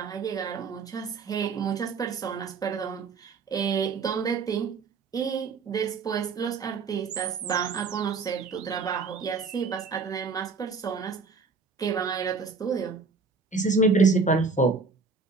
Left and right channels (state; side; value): quieter; left; 4.6 dB